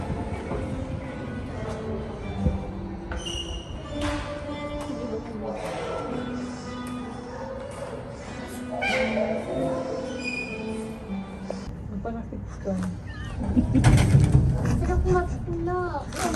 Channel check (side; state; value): both; identical; correlation 1.00